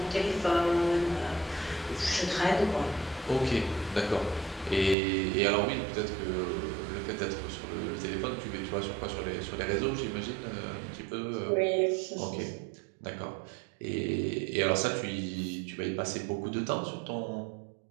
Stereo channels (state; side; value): drops out; left; at 5.0 s